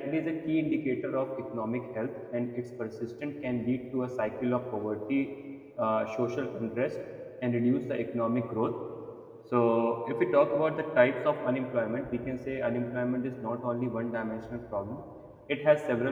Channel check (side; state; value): both; identical; correlation 1.00